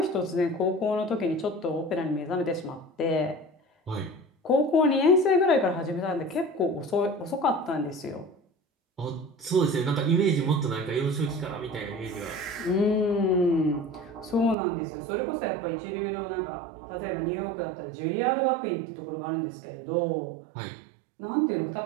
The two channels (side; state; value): left; drops out; at 14.6 s